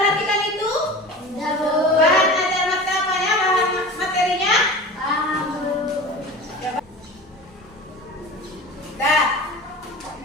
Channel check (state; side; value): normal; both; correlation 0.34